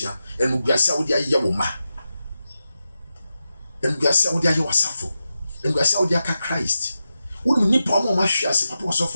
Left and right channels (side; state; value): both; inverted; correlation -0.90